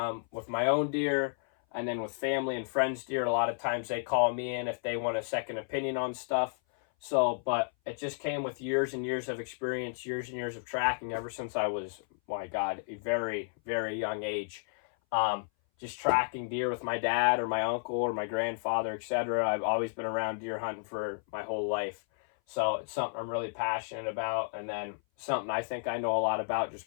with my own deer, and then with family and friends' deer. A lot of times they call me in if they want a second opinion on stuff. So, but it just came with years and years of experience, years and years of tracking ever since I was, my God, a very, very young age. Just tracking deer with my dad or my uncle or my grandfather, etc. I've always been around deer hunting for my whole life. So it's something I'm really passionate about, and then something I think I know a lot about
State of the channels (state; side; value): silent; right; 56 dB below the other